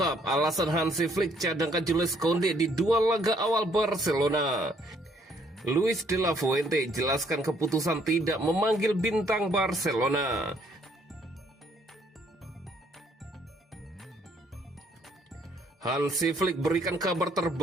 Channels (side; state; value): both; normal; correlation 0.66